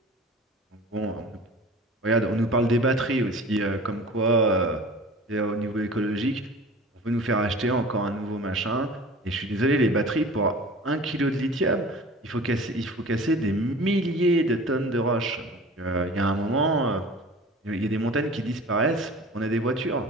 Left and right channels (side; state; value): both; normal; correlation 0.41